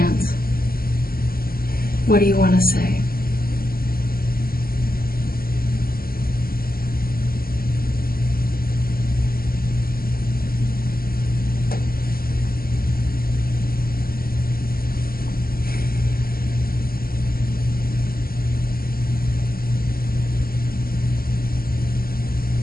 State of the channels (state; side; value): late; right; 0.43 ms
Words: What do you want to say?